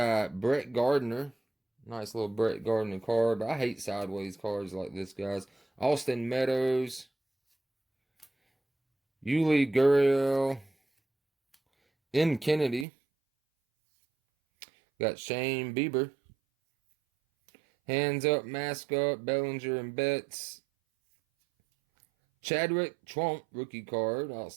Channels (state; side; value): drops out; left; at 12.9 s